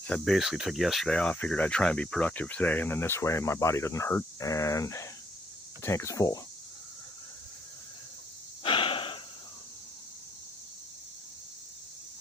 So I basically took yesterday off, figured I'd try and be productive today, and then this way my body doesn't hurt and the tank is full.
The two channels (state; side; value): normal; both; correlation 0.70